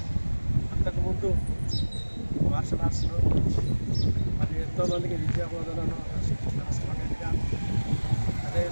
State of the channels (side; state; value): both; inverted; correlation -1.00